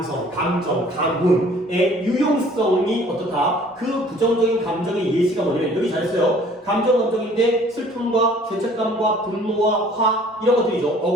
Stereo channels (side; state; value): both; normal; correlation 0.54